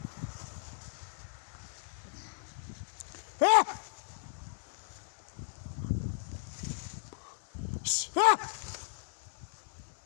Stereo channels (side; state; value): right; silent; digital silence